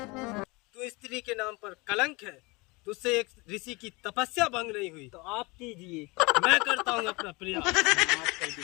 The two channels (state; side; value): quieter; right; 25.6 dB